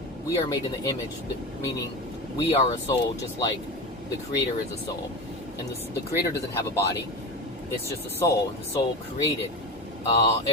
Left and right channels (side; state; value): both; normal; correlation 0.25